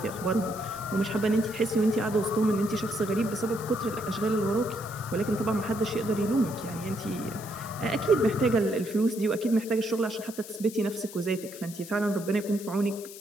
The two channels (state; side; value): noise; left; hiss, 15 dB below the sound